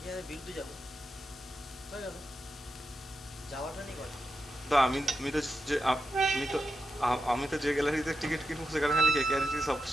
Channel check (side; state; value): both; normal; correlation 0.87